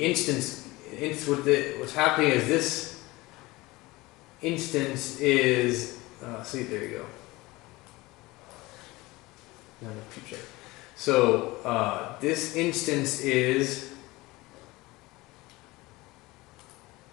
instance, what's happening is this instance is. See, there you go. No, check. So this instance is.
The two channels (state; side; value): quieter; right; 21.0 dB